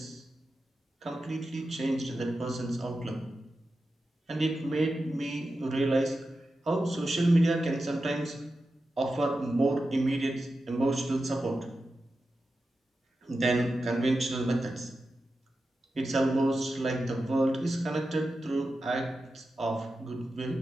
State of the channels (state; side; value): normal; both; correlation 0.91